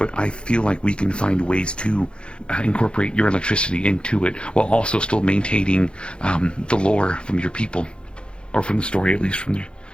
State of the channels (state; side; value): late; right; 0.055 ms